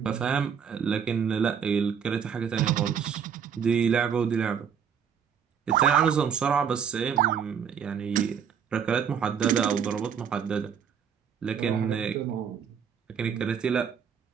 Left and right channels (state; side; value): quieter; left; 7.5 dB